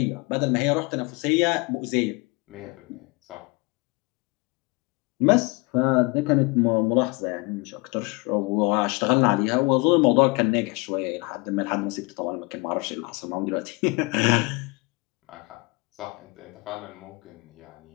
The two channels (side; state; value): right; quieter; 27.5 dB